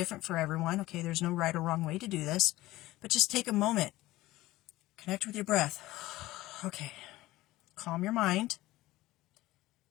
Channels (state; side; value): quieter; right; 17.6 dB